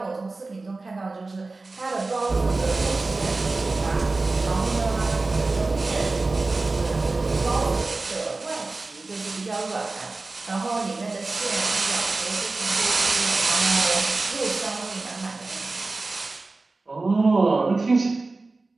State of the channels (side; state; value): left; quieter; 3.5 dB